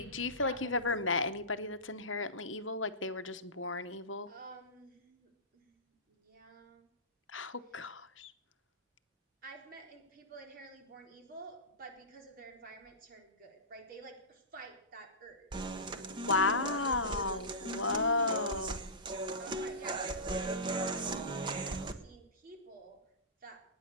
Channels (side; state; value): both; normal; correlation -0.20